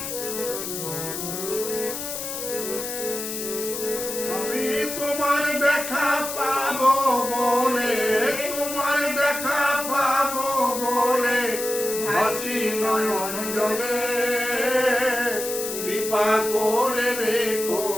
আমি তোমার দেখা পাবো বলে, তোমার দেখা পাবো বলে ভাসি নয়ন জলে, কৃপা করে রেখো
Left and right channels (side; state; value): left; noise; hiss, 6 dB below the sound